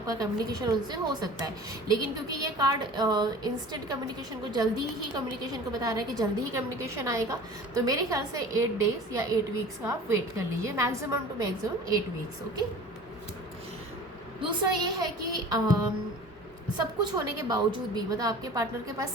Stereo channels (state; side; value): normal; both; correlation 0.41